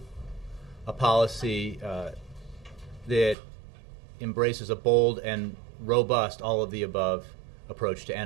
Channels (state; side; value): drops out; left; at 3.4 s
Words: a policy that embraces a bold and robust all-of-the-above approach to